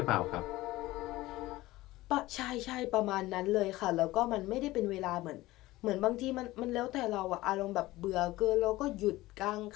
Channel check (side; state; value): right; quieter; 18.1 dB